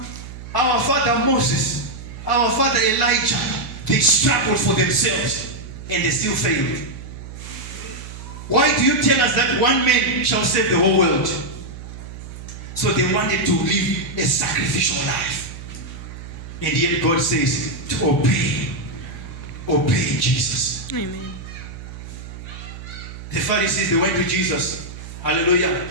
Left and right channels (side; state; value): right; noise; hum, 12 dB below the sound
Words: our father Moses, our father Elijah, they struggled for themselves and they still failed. Why do you tell us that one man shall save the whole world? So they wanted to live a sacrificial life. And yet God says to obey Jesus. Amen. The Pharisees, they went to Jesus. Hallelujah.